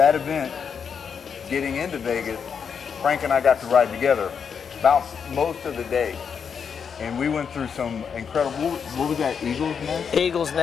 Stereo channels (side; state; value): right; quieter; 6.7 dB